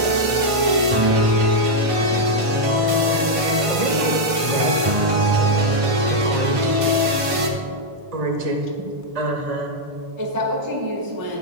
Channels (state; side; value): late; left; 1.5 ms